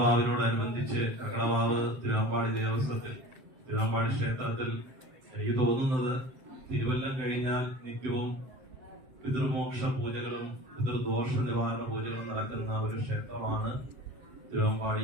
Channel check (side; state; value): left; late; 7.8 ms